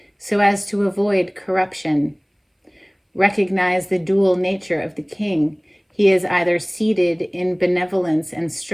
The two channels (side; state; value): both; identical; correlation 1.00